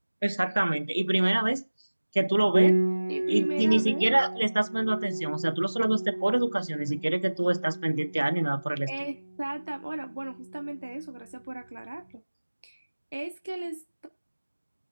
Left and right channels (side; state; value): both; inverted; correlation -1.00